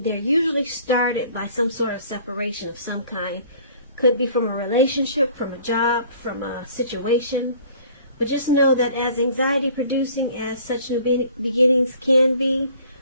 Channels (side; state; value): both; inverted; correlation -0.52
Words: usually started by some sort of separation of some kind. Could be from a relationship, from a job, from a situation. But just know that as anxiety producing as such new beginnings can be,